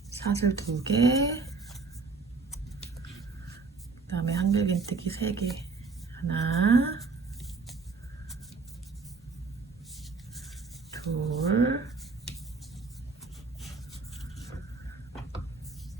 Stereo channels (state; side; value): quieter; left; 4.3 dB